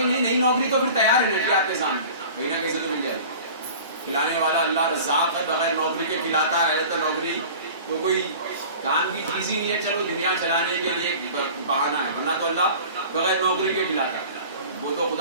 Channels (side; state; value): both; inverted; correlation -0.41